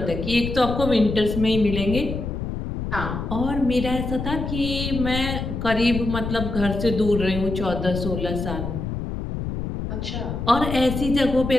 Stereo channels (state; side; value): noise; left; rumble, 5 dB below the sound